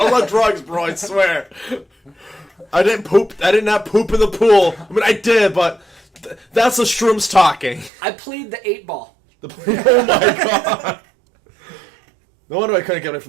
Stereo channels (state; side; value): drops out; left; at 7.9 s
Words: was on drugs, bro, I swear. I didn't poop. I did not poop in the pool. I mean, I did, but that's the shrooms talking. I plead the 8-ball. Oh my God. No wonder I couldn't get away